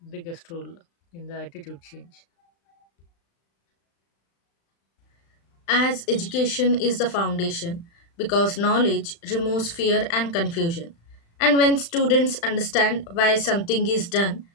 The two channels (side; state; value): right; late; 35 ms